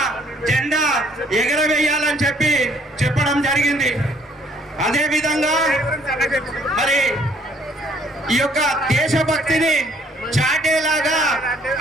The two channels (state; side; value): normal; both; correlation 0.63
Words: జెండా ఎగరవేయాలని చెప్పడం జరిగింది. అదేవిధంగా మరి ఈ యొక్క దేశభక్తిని చాటేలాగా